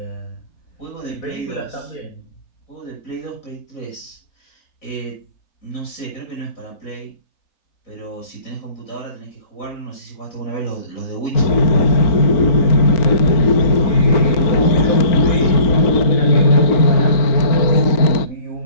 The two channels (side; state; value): right; late; 4.4 ms